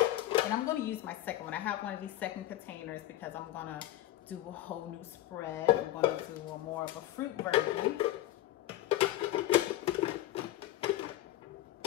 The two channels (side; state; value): right; quieter; 14.9 dB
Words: And I'm gonna use my second one. I have one of these second containers because I'm gonna do a whole new spread. I'm gonna do a more of a fruit version.